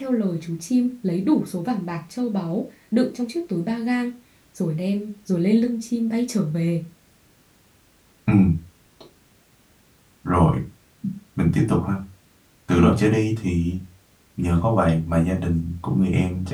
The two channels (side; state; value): both; identical; correlation 1.00